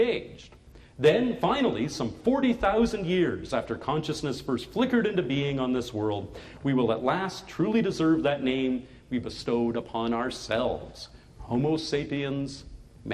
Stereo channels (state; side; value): identical; both; correlation 1.00